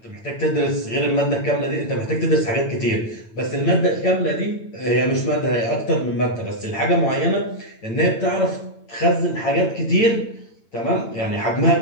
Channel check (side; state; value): right; late; 9.0 ms